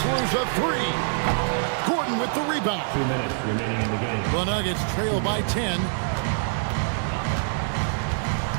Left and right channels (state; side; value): silent; left; 62 dB below the other